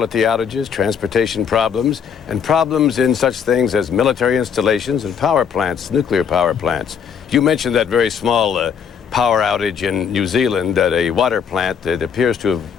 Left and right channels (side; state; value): right; quieter; 7.2 dB